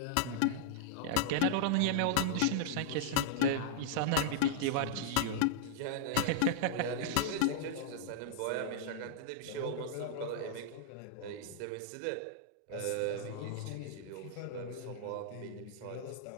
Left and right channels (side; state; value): both; different; correlation -0.01